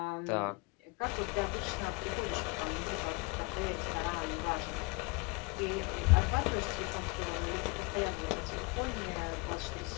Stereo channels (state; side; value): quieter; right; 27.1 dB